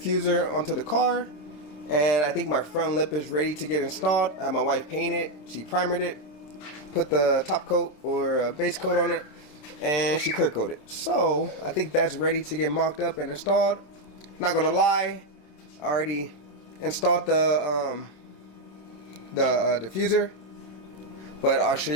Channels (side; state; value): right; late; 27 ms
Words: onto the car. And I think my front lip is ready to get installed. I had my wife paint it. She primered it, put the top coat or base coat on it, and she clear coated. So, I think that's ready to get mocked up and installed. Not gonna lie, I already installed the diffuser, but I'll show